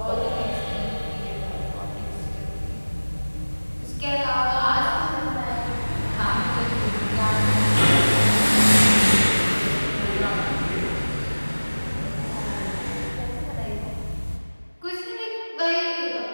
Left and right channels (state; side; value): inverted; both; correlation -1.00